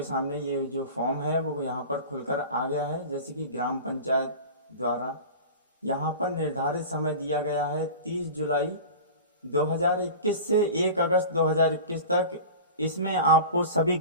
सामने ये जो फॉर्म है वो यहाँ पर खुलकर आ गया है। जैसे कि ग्राम पंचायत द्वारा यहाँ पर निर्धारित समय दिया गया है 30 जुलाई 2021 से 1 अगस्त 2021 तक। इसमें आपको सभी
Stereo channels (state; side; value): inverted; both; correlation -0.34